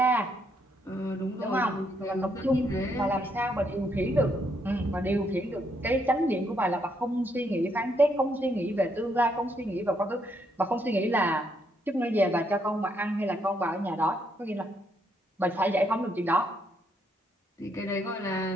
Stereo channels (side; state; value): both; normal; correlation 0.75